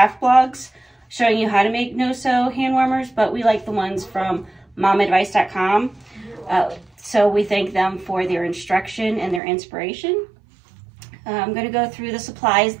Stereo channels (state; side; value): drops out; left; at 9.4 s